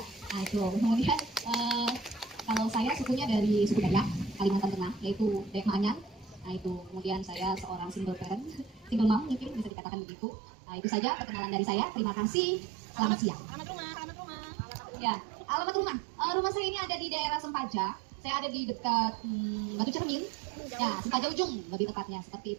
Nah itu. Kemudian kalau saya sukunya dari suku Dayak, Kalimantan Tengah, yaitu Dayak Maanyan. Nah itu. Kemudian saya seorang single parent, single mom mungkin bisa dikatakan begitu. Nah itu saja perkenalan dari saya. Terima kasih. Selamat siang. Alamat rumah. Ya, alamat rumah. Rumah saya ini ada di daerah Sempaja. Saya ada di dekat Batu Cermin. Ya, Sempaja Ujung lebih tepatnya. Seperti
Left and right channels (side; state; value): left; drops out; at 9.7 s